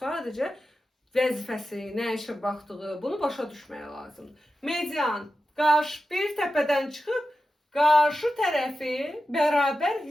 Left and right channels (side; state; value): both; normal; correlation 0.92